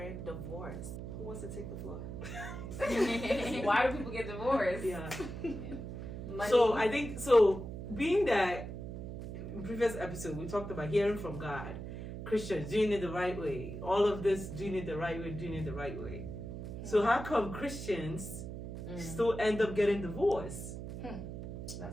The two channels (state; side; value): noise; right; hum, 8 dB below the sound